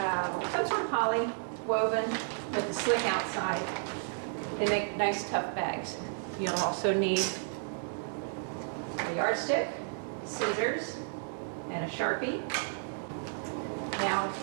some sort of poly woven with a slick outside. They make nice tough bags. You'll also need a yardstick, scissors, and a Sharpie. Now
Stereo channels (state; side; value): silent; left; digital silence